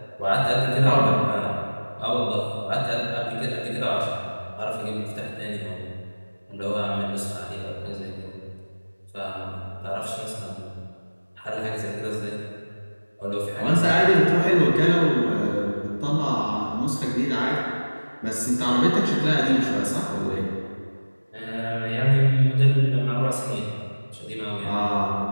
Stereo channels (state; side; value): inverted; both; correlation -1.00